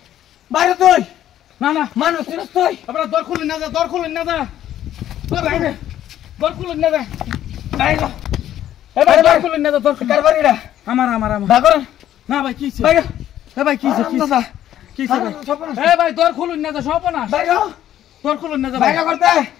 বাইরে তুই না না মানুষ চিনিস তুই আপনারা দর খুলুন না যা দর খুলুন না যা দর খুলুন না যা বাইরে এবার দর খুলুন না যা দর কার বাড়িটা আমার ভাগর না ভাই কি ছিল বাইরে ভাই কি ছিল কি ছিল ভাই দর খুলুন না যা সব না বাইরে দর খুলুন না যা বাইরে করতে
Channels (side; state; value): right; quieter; 11.8 dB